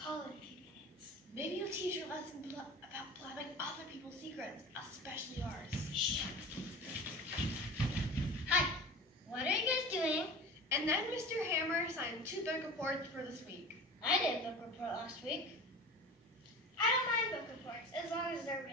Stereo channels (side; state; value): both; normal; correlation 0.36